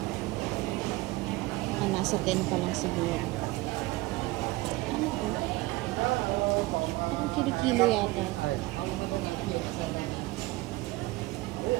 Nasa 10 pa lang siguro. Ano to? Parang kilo-kilo yata.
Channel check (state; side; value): quieter; left; 20.2 dB